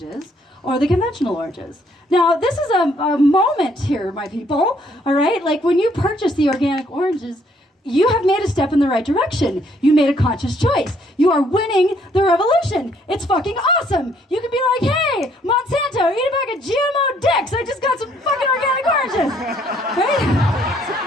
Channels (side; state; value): both; normal; correlation 0.66